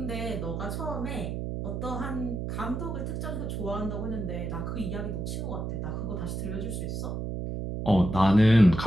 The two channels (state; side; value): noise; right; hum, 3 dB below the sound